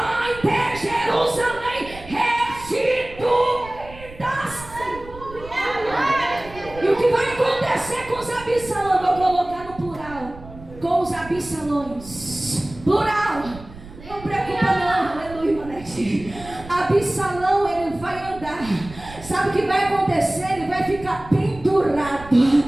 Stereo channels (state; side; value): noise; right; rumble, 17 dB below the sound